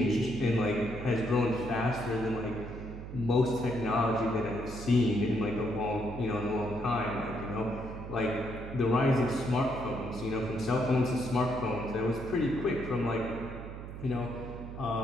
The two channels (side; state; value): right; noise; hum, 10 dB below the sound